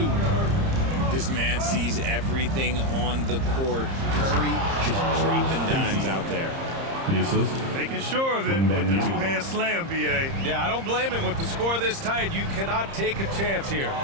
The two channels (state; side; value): late; left; 30 ms